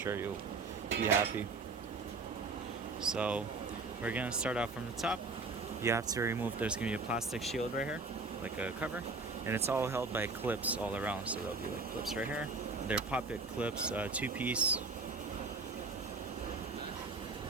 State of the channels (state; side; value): quieter; left; 3.8 dB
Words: you'll be happy. So we're going to start off from the top. You have to remove, there's going to be a plastic shield right here, like a cover, and it's all held by clips all around, so there'll be like clips right here. They're pop-it clips, 2-piece.